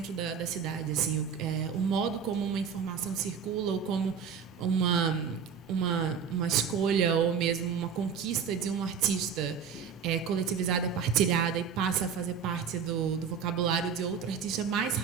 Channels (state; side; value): quieter; left; 6.9 dB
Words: da cidade, assim, o modo como uma informação circula, ou como uma escolha ou mesmo uma conquista de um artista coletivizada, partilhada e passa a fazer parte do vocabulário de outro artista mais